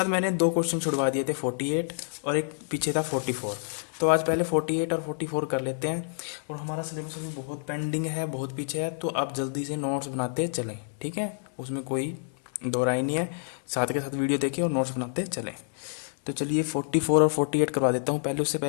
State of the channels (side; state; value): right; silent; 59 dB below the other